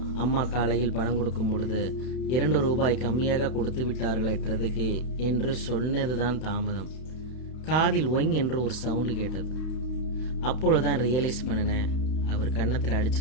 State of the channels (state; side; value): late; right; 31 ms